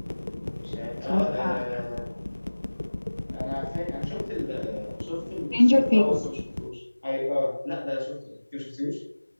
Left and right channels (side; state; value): both; inverted; correlation -1.00